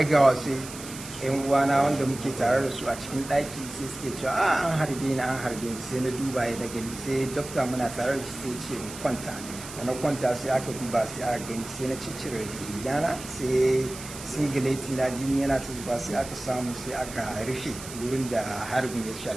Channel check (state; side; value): noise; right; hiss, 12 dB below the sound